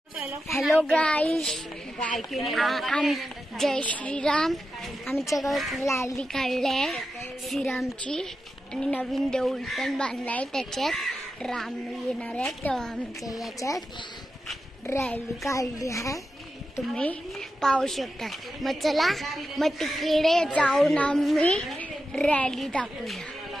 हॅलो गाईस, जय श्रीराम. आमच्या गावात रॅली काढली श्रीरामची आणि नवीन देऊळ पण बांधलाय. त्याच्यात राम येणार आहे तेव्हा आमच्या याच्यात रॅली काढली आहे, तुम्ही पाहू शकता. मग चला, मग तिकडे जाऊन आम्ही रॅली दाखवूया.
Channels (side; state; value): both; normal; correlation 0.90